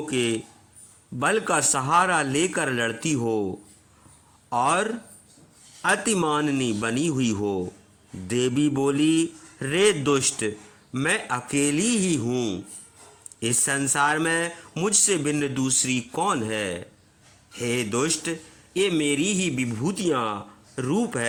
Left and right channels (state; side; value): identical; both; correlation 1.00